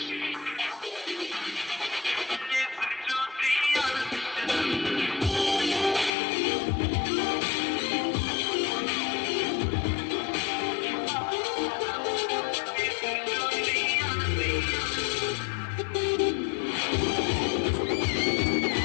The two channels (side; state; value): right; drops out; at 6.1 s